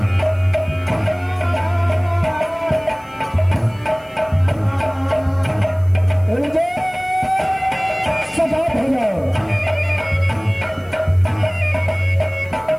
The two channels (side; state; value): left; noise; hiss, 30 dB below the sound